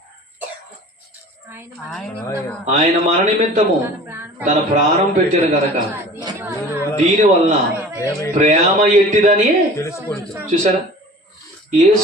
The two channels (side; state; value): both; normal; correlation 0.43